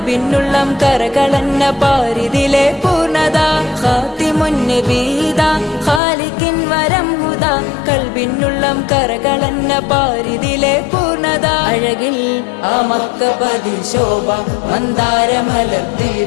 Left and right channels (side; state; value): right; drops out; at 6.0 s